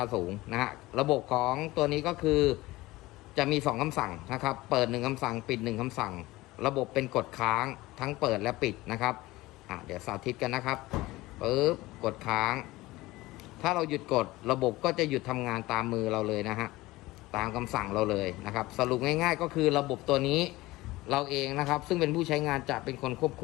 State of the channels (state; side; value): quieter; right; 19.2 dB